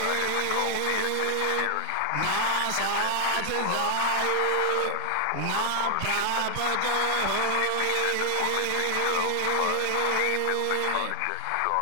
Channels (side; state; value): both; different; correlation 0.00